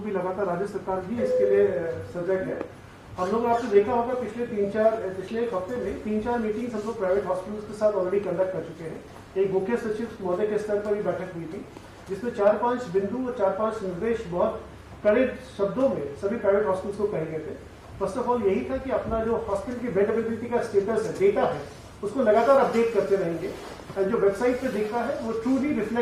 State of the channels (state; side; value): identical; both; correlation 1.00